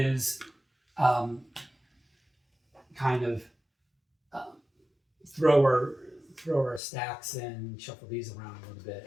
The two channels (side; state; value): right; drops out; at 6.8 s